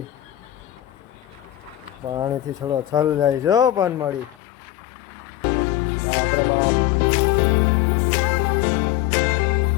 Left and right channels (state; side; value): drops out; right; at 4.4 s